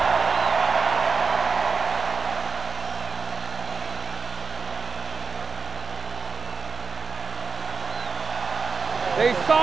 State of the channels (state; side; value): quieter; left; 4.8 dB